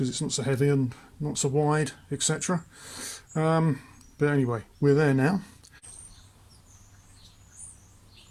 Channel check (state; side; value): identical; both; correlation 1.00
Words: it's not so heavy and not so wide, etc. But anyway, we're there now.